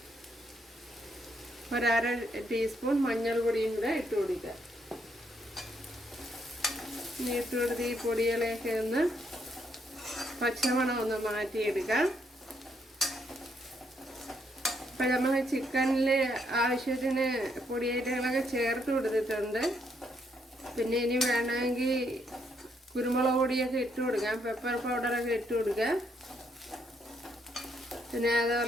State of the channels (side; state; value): both; normal; correlation 0.74